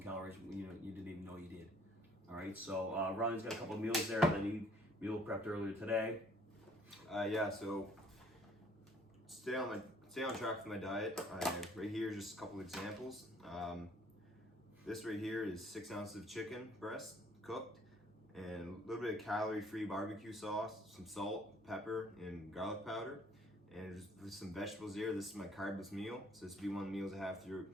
calories, you didn't even know you did. All right, so Ronnie's got a couple meals there that he meal prepped earlier today. Yeah, so stay on track for my diet. Right here is just a couple examples. This right here is 6 ounces of chicken breast cooked, and a little bit of calorie-free barbecue sauce, some salt, pepper, and garlic powder, and just some vegetables here. This is my carbless meal, so this will be one of the meals I have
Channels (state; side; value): normal; both; correlation 0.59